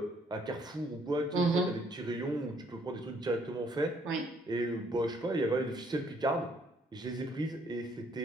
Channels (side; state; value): both; normal; correlation 0.66